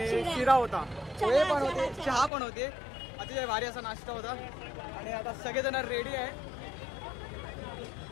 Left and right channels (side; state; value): right; drops out; at 2.3 s